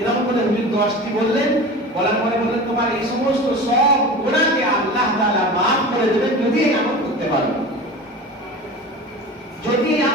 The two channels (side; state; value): both; normal; correlation 0.33